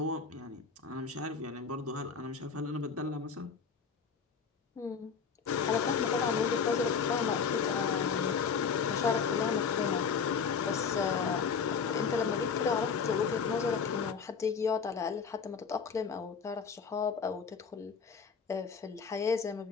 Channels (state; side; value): quieter; right; 6.0 dB